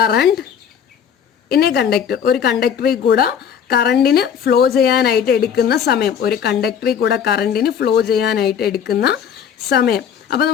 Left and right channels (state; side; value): quieter; right; 8.1 dB